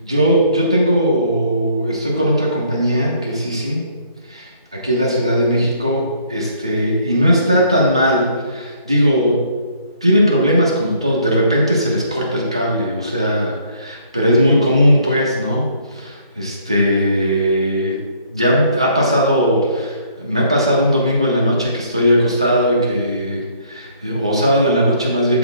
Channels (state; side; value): inverted; both; correlation -0.62